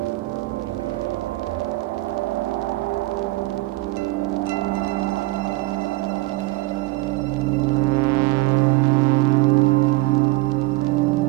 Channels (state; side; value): quieter; left; 20.8 dB